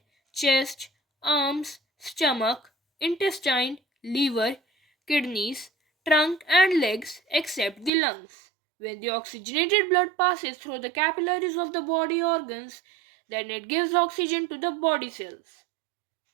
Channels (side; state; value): left; drops out; at 7.9 s